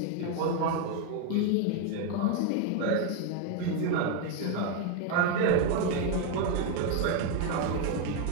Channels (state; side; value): different; both; correlation 0.01